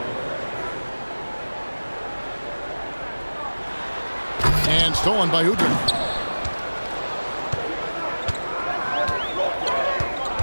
And stolen by Udrih.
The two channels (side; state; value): both; inverted; correlation -1.00